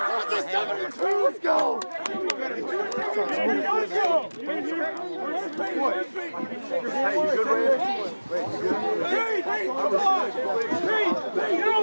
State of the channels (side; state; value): both; inverted; correlation -1.00